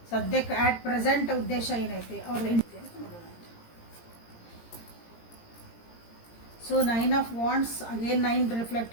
ಸದ್ಯಕ್ಕೆ ಆಟ್ ಪ್ರೆಸೆಂಟ್ ಉದ್ದೇಶ ಏನೈತಿ ಅವ್ರದ್ದು ನೋಡೋಣ ಅಂತ. So 9 of wands again 9 reflect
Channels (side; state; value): right; late; 17 ms